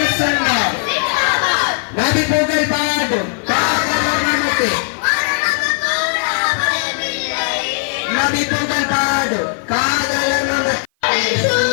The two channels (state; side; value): silent; right; 55 dB below the other